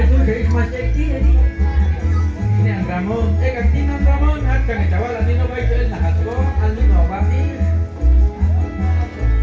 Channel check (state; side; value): identical; both; correlation 1.00